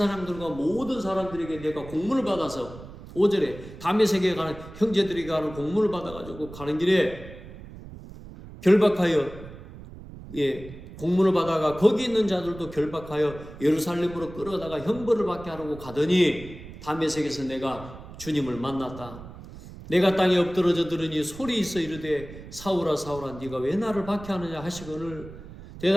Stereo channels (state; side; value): noise; right; rumble, 15 dB below the sound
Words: 모든 사람들에게 내가 공문을 받아서 5절에 다메섹에 가는 형제들이 가는 공문을 받아가지고 가는 길에 결박하여 공문을 받아가 거기 있는 자들도 결박하여 예루살렘으로 끌어다가 형벌을 받게 하려고 가더니 다메섹에서 내가 주님을 만났다. 내가 땅에 엎드러져 들으니 소리 있어 이르되 사울아 사울아 네가 왜 나를 박해하느냐 하시거늘